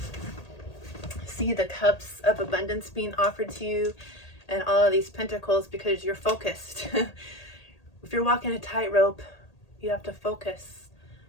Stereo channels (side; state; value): right; late; 1.8 ms